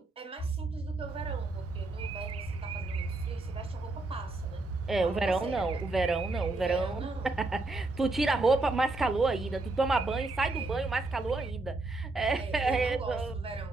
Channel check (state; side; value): quieter; left; 3.1 dB